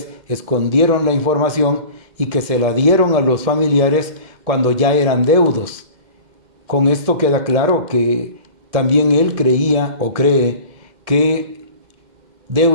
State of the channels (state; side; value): late; left; 2.1 ms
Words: escondieron la información y que se la dieron a los familiares cuando ya eran deudos. Con esto queda claro que también él creía o cree que